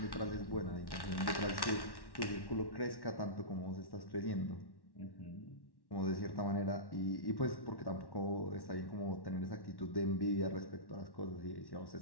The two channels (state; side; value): late; right; 1.1 ms